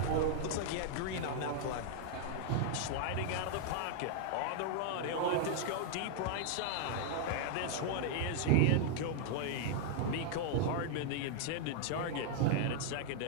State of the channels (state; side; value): different; both; correlation -0.01